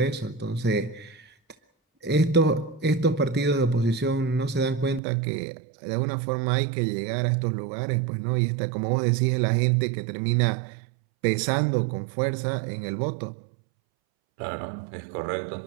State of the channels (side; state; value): left; drops out; at 5.0 s